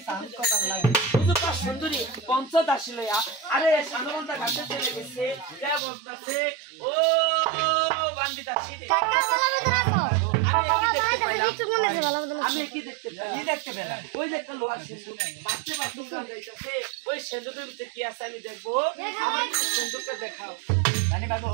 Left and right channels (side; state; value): left; drops out; at 5.8 s